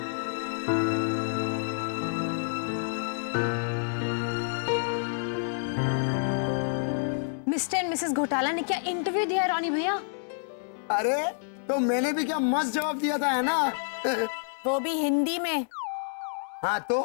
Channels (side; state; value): right; silent; 58 dB below the other